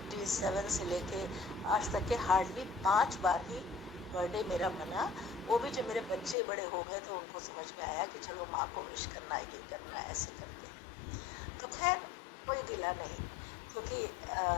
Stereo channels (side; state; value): right; drops out; at 6.4 s